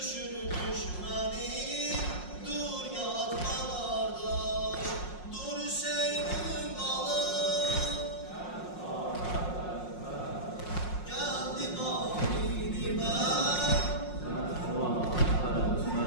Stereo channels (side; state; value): right; late; 5.5 ms